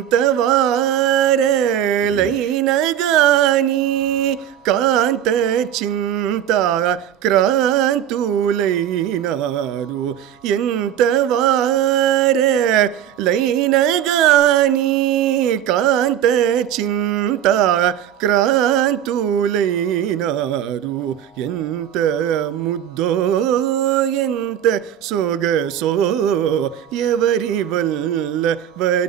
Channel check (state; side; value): quieter; left; 10.4 dB